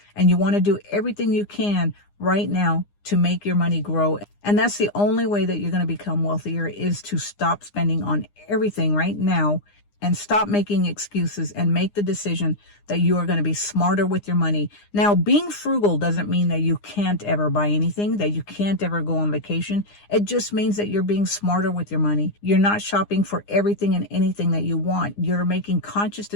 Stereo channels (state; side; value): late; right; 9.8 ms